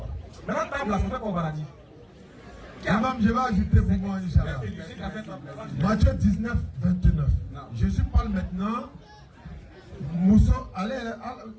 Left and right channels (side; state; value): both; identical; correlation 1.00